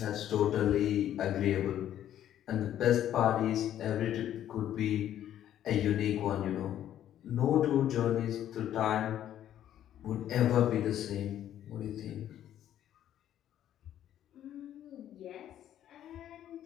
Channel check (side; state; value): right; quieter; 11.3 dB